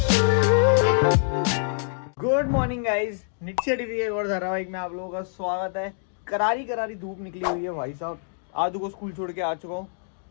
गुड मॉर्निंग गाइस, नित्य टीवी के और धारावाहिक में आप लोगों का स्वागत है। करारी करारी धूप निकली हुई है भाई साहब। आदू को स्कूल छोड़ के आ चुका हूँ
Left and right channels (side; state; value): right; silent; digital silence